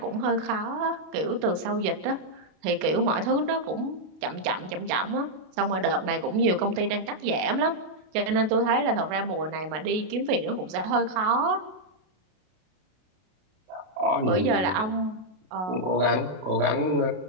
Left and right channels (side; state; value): left; late; 32 ms